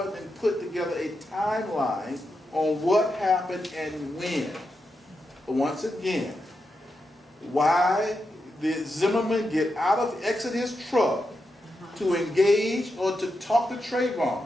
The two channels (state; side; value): normal; both; correlation 0.86